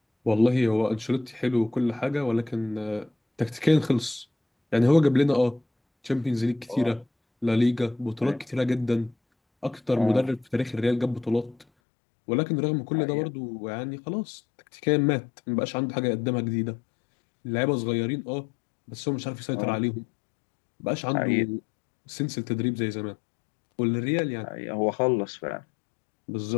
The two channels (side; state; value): right; drops out; at 11.7 s